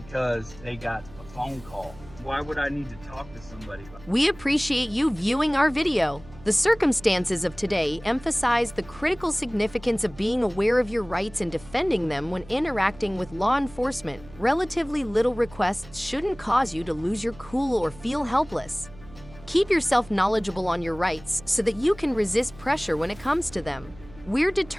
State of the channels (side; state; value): right; noise; hum, 20 dB below the sound